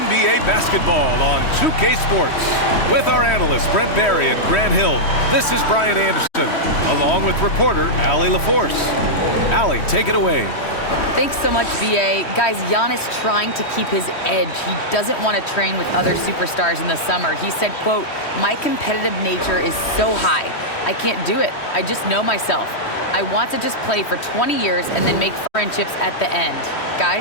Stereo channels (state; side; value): late; right; 3.1 ms